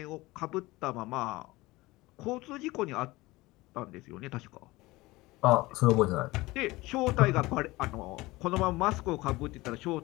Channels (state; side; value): quieter; right; 20.5 dB